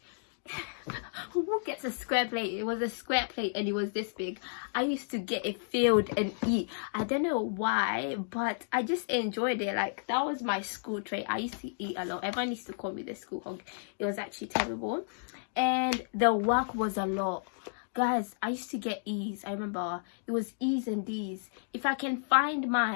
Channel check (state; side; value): silent; right; digital silence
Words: Who gets a square plate? It was a square plate, and it was this big. I used to get it filled and eat. I don't know why, but I just enjoyed it. Like, that was my school trait. I used to eat a lot. Everyone used to call me the school hog. It was actually terrible, and the work was a lot. Guys, I used to get E's. I remember it was E's and D's. If I can find